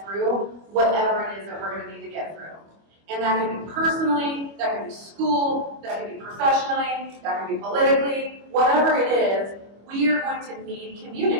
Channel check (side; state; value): left; late; 25 ms